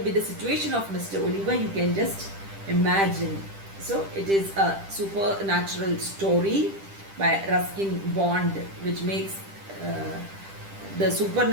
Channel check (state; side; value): late; left; 10 ms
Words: be the situation of Mr. Oliver? You can just imagine. So it is a supernatural story by Ruskin Bond, which makes the